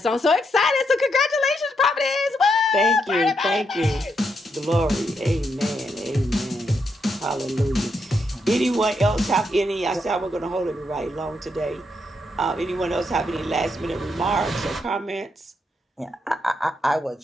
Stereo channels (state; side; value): normal; both; correlation 0.80